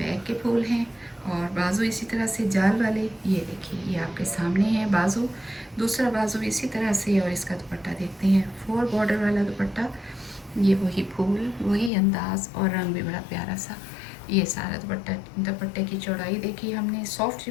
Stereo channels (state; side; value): drops out; right; at 11.9 s